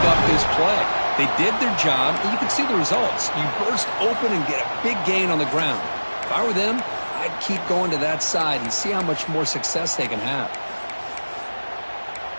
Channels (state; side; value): inverted; both; correlation -1.00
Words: up this play. They did their job, and you can see the results. You burst open and get a big gain on the ground. If I were them, I'd keep going to that side and see how much more success they can have.